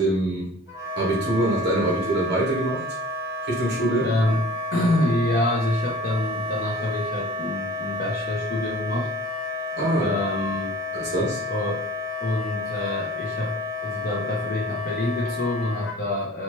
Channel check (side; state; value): both; normal; correlation 0.45